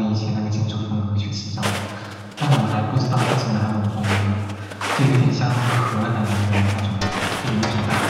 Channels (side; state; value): both; identical; correlation 1.00